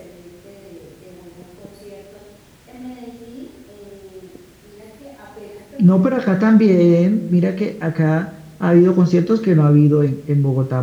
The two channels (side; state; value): both; identical; correlation 1.00